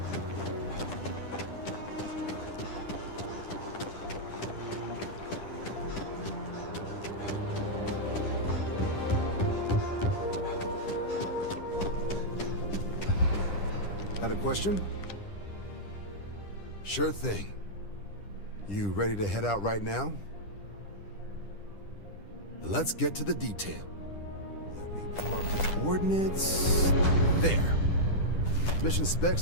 Got a question? Sure thing. You ready to head out right now? Let's get to the detail. Let me pull up the coordinates. There. Mission specs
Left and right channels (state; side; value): late; right; 10 ms